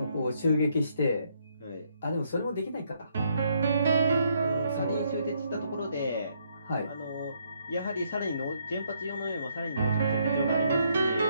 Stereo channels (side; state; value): both; inverted; correlation -0.72